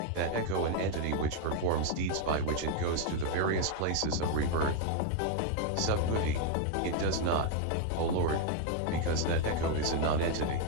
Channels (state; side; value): different; both; correlation 0.01